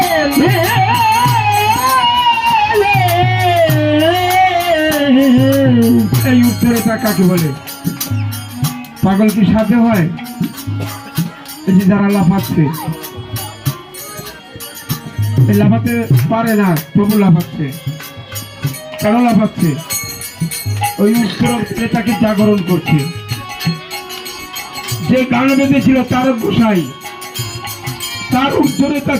এই উত্তরটা কাকে বলে? পাগল কি সাথে হয়? এই যে যারা লাফাচ্ছে, এই লাফাতে পারে না তবু লাফাচ্ছে, কেন লাফাচ্ছে? ওই উত্তর এটাকে জাগরণ করছে। যে গান বেঁধেছিল তার গোসাই, তার উত্তরেতা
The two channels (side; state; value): both; identical; correlation 1.00